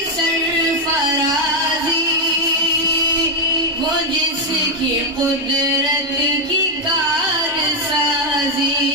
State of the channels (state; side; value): normal; both; correlation 0.03